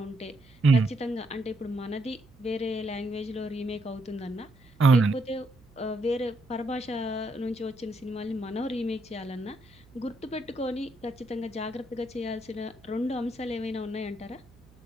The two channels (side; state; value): right; noise; hum, 27 dB below the sound